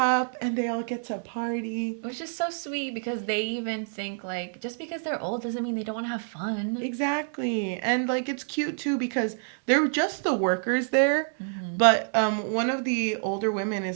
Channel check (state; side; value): silent; left; digital silence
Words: and they all get to party. Which is so sweet because they even think like just because they're old doesn't mean they don't want to have fun. Exactly. And like it's cute too because they're just the workers there. But one of the older women